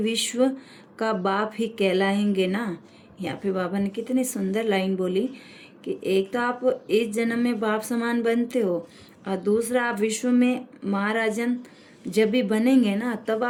का बाप ही कहलाएंगे ना। यहाँ पे बाबा ने कितनी सुंदर लाइन बोली कि एक तो आप इस जन्म में बाप समान बनते हो और दूसरा आप विश्व में महाराजन जब भी बनेंगे ना तब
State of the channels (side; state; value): both; identical; correlation 1.00